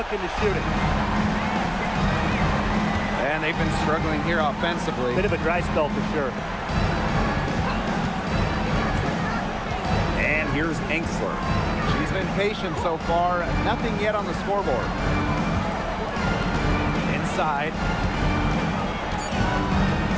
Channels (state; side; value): identical; both; correlation 1.00